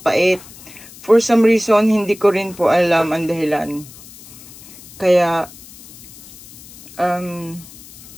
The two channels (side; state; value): left; noise; hiss, 19 dB below the sound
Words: For some reason, hindi ko rin po alam ang dahilan. Kaya,